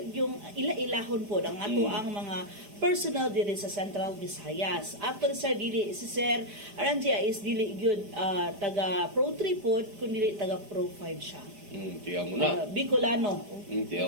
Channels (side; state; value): left; late; 5.0 ms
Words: yung ila-ilahon po ang ato ang mga personal diri sa Central Visayas. Actually sir dili si sir Aranjia is dili gyud taga Pro 3 pod kun dili taga Pro 5 siya. Tiyaw mo na. Bicolano.